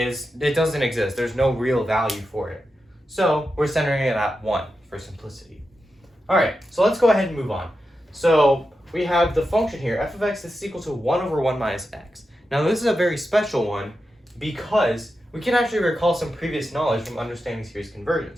doesn't exist. There's no real value for it. So we're centering it at 1 for simplicity. Alright, so let's go ahead and move on. So we have the function here, f of x is equal to 1 over 1 minus x. Now this is a very special one because we can actually recall some previous knowledge from understanding series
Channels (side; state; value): both; normal; correlation 0.89